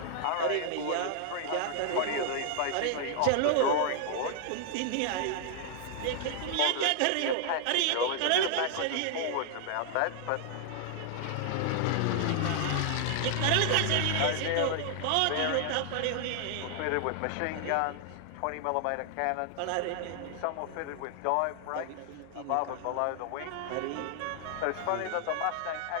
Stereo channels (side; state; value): both; different; correlation 0.00